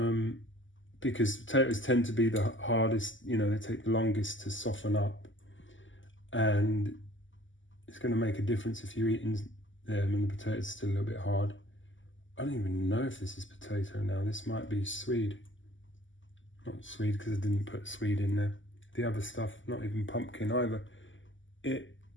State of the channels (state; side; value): late; right; 0.55 ms